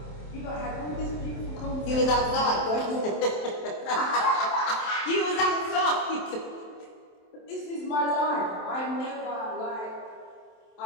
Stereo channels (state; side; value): late; right; 27 ms